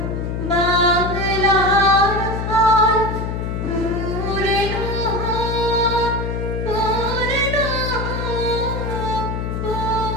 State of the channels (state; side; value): noise; left; hum, 3 dB below the sound